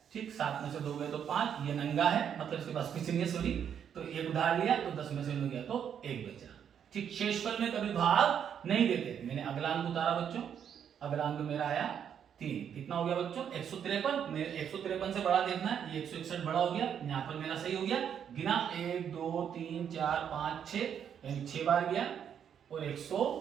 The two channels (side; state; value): left; quieter; 8.4 dB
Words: ठीक, 7 में से 2 गए तो 5, ये नंगा है मतलब इसके पास कुछ नहीं है सॉरी, तो एक उधार लिया तो 10 में से 9 गया तो 1 बचा ठीक। शेषफल में कभी भाग नहीं देते। मैंने अगला अंक उतारा बच्चों, अगला अंक मेरा आया 3, कितना हो गया बच्चों 153। मेरे 153 से बड़ा देखना है, ये 161 बड़ा हो गया, यहाँ पर मेरा सही हो गया, गिना 1 2 3 4 5 6 यानी 6 बार गया और